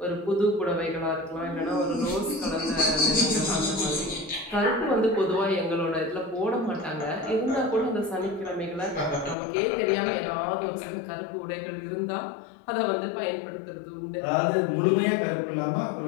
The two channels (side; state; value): right; drops out; at 9.3 s